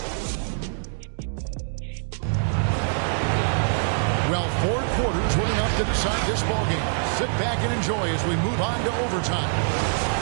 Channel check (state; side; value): silent; left; digital silence